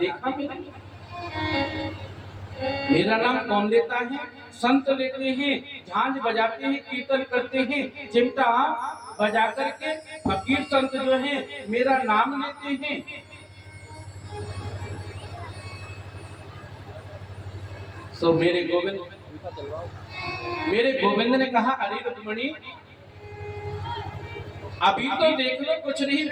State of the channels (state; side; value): identical; both; correlation 1.00